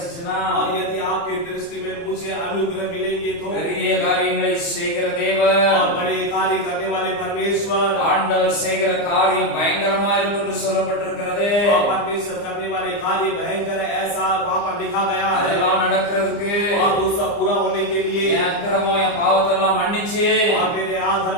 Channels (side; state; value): right; late; 29 ms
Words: और यदि आपकी दृष्टि में मुझे अनुग्रह मिलेंगे तो பெரிய காரியங்களை செய்கிற தேவன், और बड़े कार्य करने वाले परमेश्वर ஆண்டவர் செய்கிற காரியம் பயங்கரமா இருக்கும் என்று சொல்லப்பட்டிருக்கிறது। और परमेश्वर करने वाले कार्य भयंकर है ऐसा वहाँ पर लिखा गया है। அதெல்லாம் நடக்கிறதுக்கு और वो सब पूरा होने के लिए என் அக்கிரமம் என் பாவத்தெல்லாம் மன்னிச்சு, और मेरे